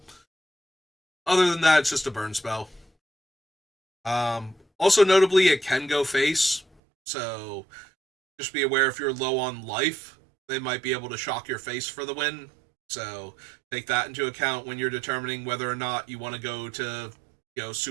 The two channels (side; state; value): left; drops out; at 6.7 s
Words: Other than that, it's just a burn spell. Also, notably, it can go face, so just be aware if you're low on life, they might be able to shock your face for the win. So take that into account when you're determining whether or not you want to go to,